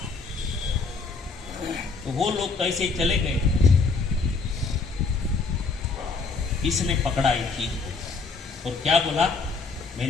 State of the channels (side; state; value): right; quieter; 4.3 dB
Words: तो वो लोग कैसे चले गए, इसने पकड़ा एक चीज को और क्या बोला,